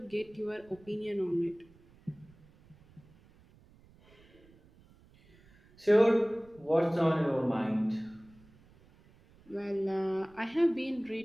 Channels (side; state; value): right; noise; rumble, 27 dB below the sound